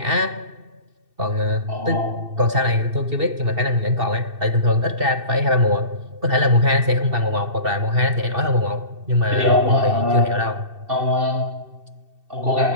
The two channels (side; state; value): left; late; 2.7 ms